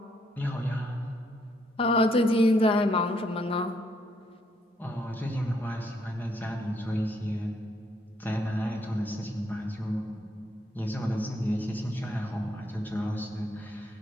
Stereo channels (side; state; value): both; normal; correlation 0.73